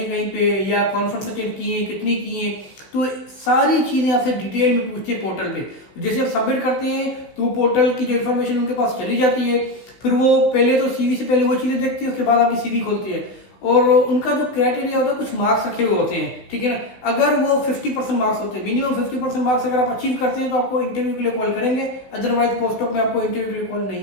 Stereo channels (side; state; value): right; late; 16 ms